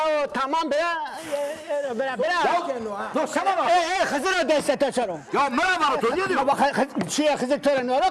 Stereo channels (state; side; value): identical; both; correlation 1.00